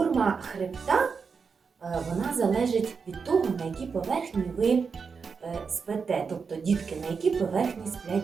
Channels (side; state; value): left; quieter; 5.5 dB